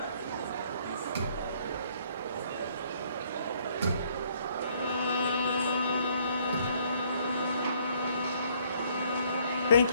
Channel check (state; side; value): inverted; both; correlation -0.64